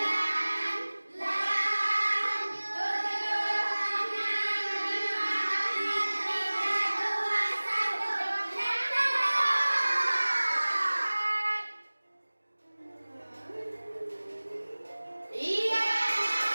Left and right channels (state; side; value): inverted; both; correlation -1.00